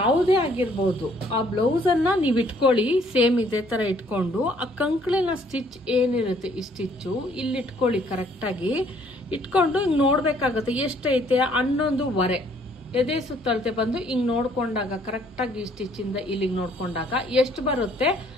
ಆಗಿರ್ಬೋದು, ಆ ಬ್ಲೌಸನ್ನು ನೀವು ಇಟ್ಕೊಳ್ಳಿ. ಸೇಮ್ ಇದೇ ಥರ ಇಟ್ಕೊಂಡು ಆ ಕಂಕ್ಳಿನ ಸ್ಟಿಚ್ ಏನಿರುತ್ತೆ ಈ ಸ್ಟಿಚ್ಚು ಇಲ್ಲಿ ಇಟ್ಕೊಳ್ಳಿ. ಕರೆಕ್ಟಾಗಿ ಇಟ್ಕೊಂಡು ಹಿಂಗೆ ನೋಡಬೇಕಾಗುತ್ತೆ ಎಷ್ಟೈತೆ 11.25 ಎದೆ ಸುತ್ತಳತೆ ಬಂದು ಹಿಂಗೆ ನೋಡ್ಕೊಂಡಾಗ ಕರೆಕ್ಟಾಗಿ ಈ ಸ್ಟಿಚ್ಚಿಂದ ಇಲ್ಲಿಗೆ ನೋಡ್ಕೊಂಡಾಗ ಎಷ್ಟು ಬರುತ್ತೆ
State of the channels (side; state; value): both; normal; correlation 0.63